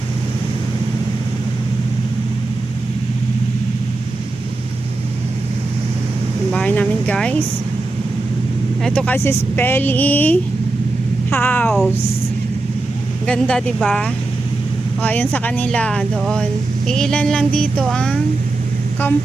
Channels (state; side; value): quieter; left; 3.1 dB